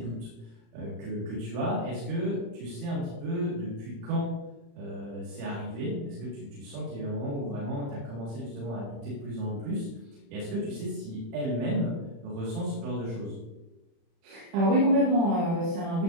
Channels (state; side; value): late; left; 35 ms